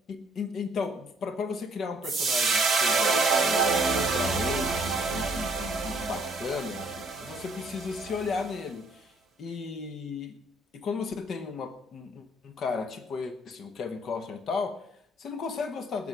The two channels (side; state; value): both; normal; correlation 0.63